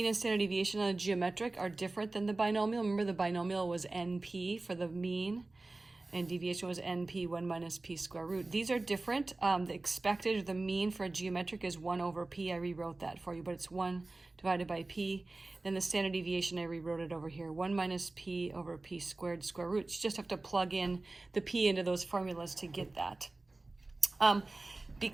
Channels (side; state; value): left; quieter; 3.1 dB